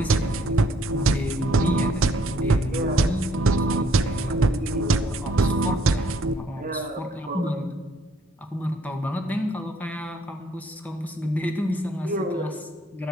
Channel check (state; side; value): normal; both; correlation 0.65